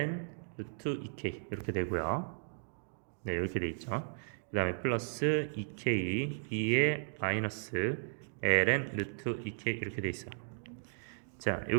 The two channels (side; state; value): left; silent; digital silence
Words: 루트 2k 이렇게 되고요. 네, 이렇게 돼 있죠. 그 다음에 플러스 2k 2에 마이너스 ln 루트 2k 이렇게 돼 있어요. 자,